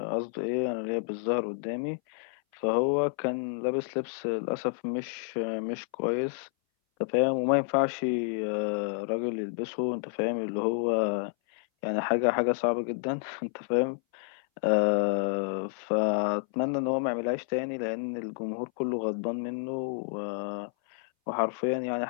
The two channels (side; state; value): right; silent; 58 dB below the other